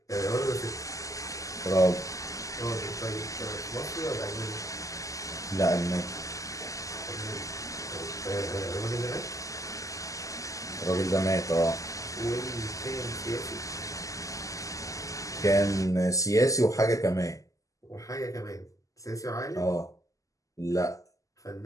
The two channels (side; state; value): right; late; 0.16 ms